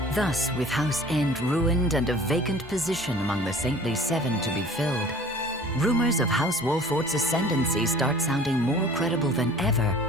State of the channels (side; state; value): both; normal; correlation 0.47